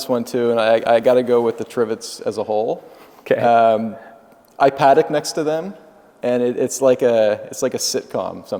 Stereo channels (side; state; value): both; identical; correlation 1.00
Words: one too, and I got to go with the Trivets as a whole. Okay. I paddock next to them, and it's like a sitcom